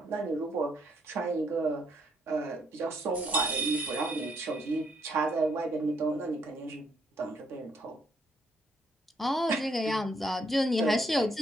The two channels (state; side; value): normal; both; correlation 0.71